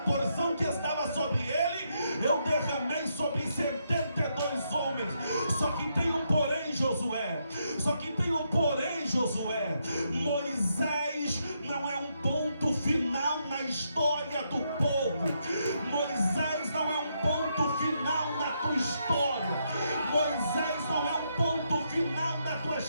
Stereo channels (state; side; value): inverted; both; correlation -0.79